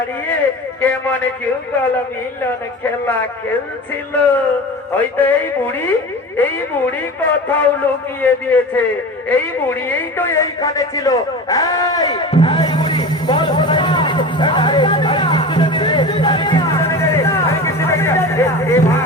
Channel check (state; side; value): normal; both; correlation 0.31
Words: কেমন যুগল মিলন খেলা খেলছিল। হয়তো এই বুড়ি কোথাও লুকিয়ে দিয়েছে। এই বুড়ি এই তো এইখানে ছিল। এই এই বুড়ি বল